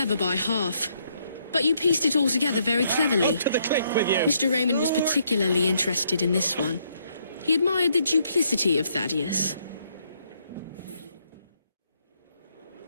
by half. But But you pieced it all together very cleverly. To the click with you. Mr. Raymond was particularly interested in this one. He admired the duplicity of Thaddeus.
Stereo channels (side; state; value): both; inverted; correlation -0.72